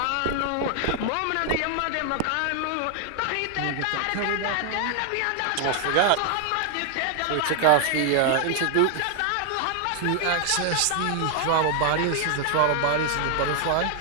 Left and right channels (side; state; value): both; different; correlation 0.00